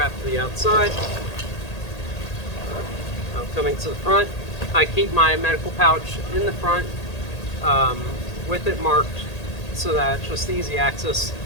to the outside. Now coming to the front, I keep my medical pouch in the front with it marked so that it's just easy access.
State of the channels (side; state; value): right; late; 1.8 ms